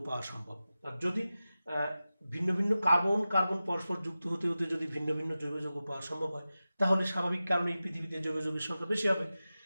পাওয়া সম্ভব। আর যদি ভিন্ন ভিন্ন কার্বন পরস্পর যুক্ত হতে হতে যদি ভিন্ন ভিন্ন জৈব যৌগ পাওয়া সম্ভব হয় তাহলে স্বাভাবিক কারণেই পৃথিবীতে জৈব যৌগের সংখ্যা বেশি হবে।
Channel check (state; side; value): inverted; both; correlation -0.95